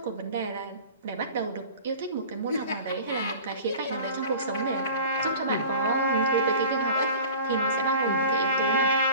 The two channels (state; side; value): inverted; both; correlation -0.40